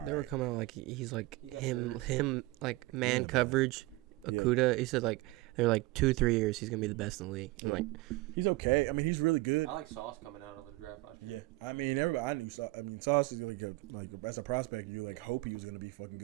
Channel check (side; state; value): left; quieter; 21.1 dB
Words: They were coming out like he's like him like man coverage. Okuda, he said like they're like 2-3 years he's gonna be the best in the league. And like he's okay. I mean, he's really good. I like Sauce coming out of the draft last year. Yeah, I mean I knew Sauce. I mean Sauce is like as a prospect, you like hope he was gonna be fucking